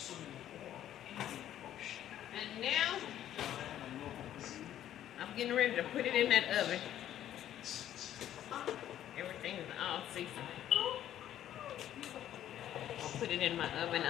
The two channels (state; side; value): quieter; right; 11.6 dB